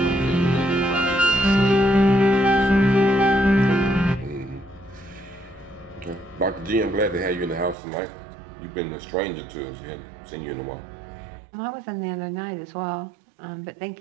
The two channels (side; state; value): left; drops out; at 7.8 s